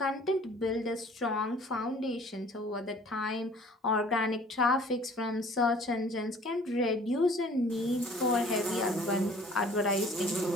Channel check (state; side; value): normal; both; correlation 0.52